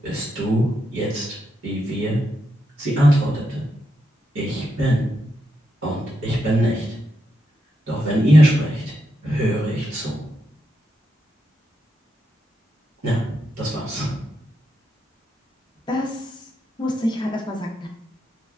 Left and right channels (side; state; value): both; normal; correlation 0.83